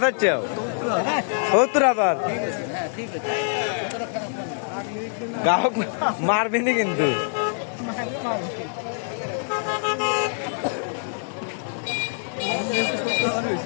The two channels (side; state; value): right; silent; digital silence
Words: চাচ্ছে 70,000 গ্রাহক মারবিনি কিন্তু